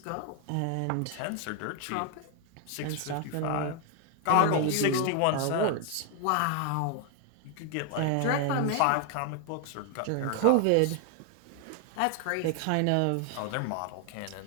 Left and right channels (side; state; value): both; different; correlation 0.00